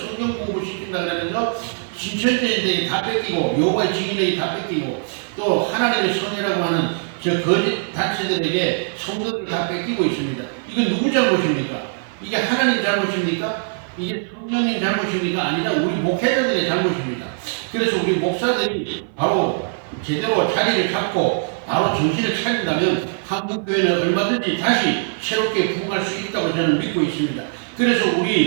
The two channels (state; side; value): silent; left; 55 dB below the other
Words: 공부 시킨다 그러면서 신천지인들이 다 뺏기고 여호와의 증인들이 다 뺏기고 또 하나님의 선이라고 하는 저 거짓 단체들에게 성도들을 다 뺏기고 있습니다. 이건 누구 잘못입니까? 이게 하나님 잘못입니까? 이게 성령님 잘못입니까? 아니라 우리 목회자들의 잘못입니다. 그래서 우리 목사들이 바로 제대로 자리를 잡고 바로 정신을 차린다면 한국교회는 얼마든지 다시 새롭게 부흥할 수 있다고 저는 믿고 있습니다. 그래서